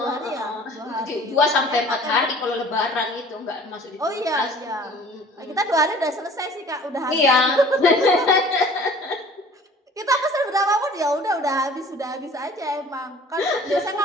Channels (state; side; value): normal; both; correlation 0.49